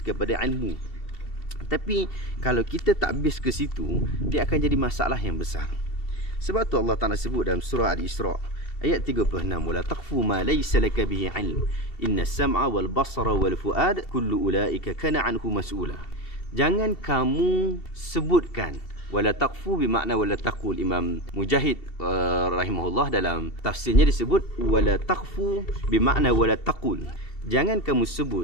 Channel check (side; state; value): right; late; 2.7 ms